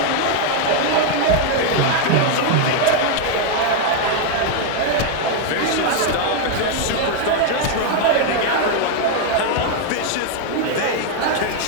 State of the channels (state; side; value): different; both; correlation 0.01